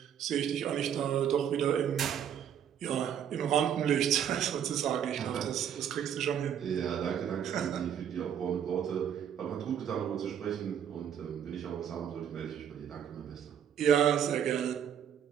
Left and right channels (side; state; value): left; quieter; 9.0 dB